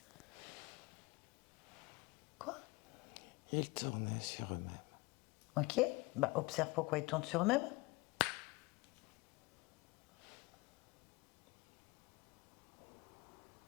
Quoi? Ils tournaient sur eux-mêmes. Ok. Observe pourquoi ils tournent sur eux-mêmes.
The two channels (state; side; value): quieter; right; 23.7 dB